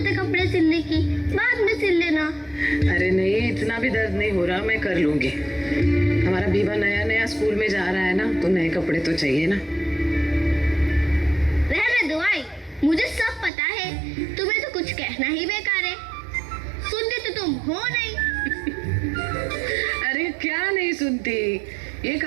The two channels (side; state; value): left; drops out; at 13.5 s